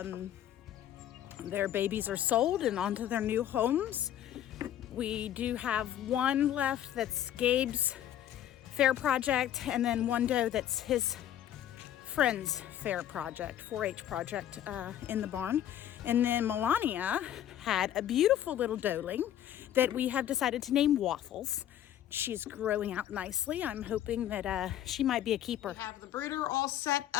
Their babies are sold and onto their new homes. We do have one left that's Gabe's fair project, and then one doe that's his friend's fair project, 4-H project in the barn. And then Melania had a beautiful little doeling that we have decided to name Waffles. She's growing out nicely. I'm hoping that she might be a keeper. We have the brooder all set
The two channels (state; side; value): quieter; right; 11.3 dB